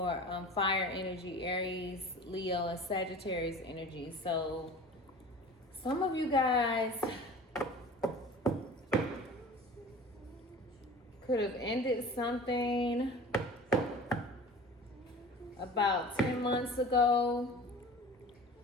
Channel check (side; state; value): both; normal; correlation 0.40